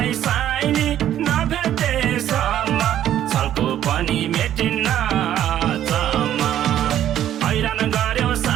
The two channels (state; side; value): quieter; left; 11.3 dB